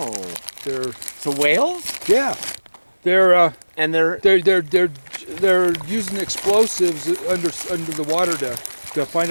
They're So whales? yeah. They're And they're using explosives under the water to find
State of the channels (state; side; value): inverted; both; correlation -1.00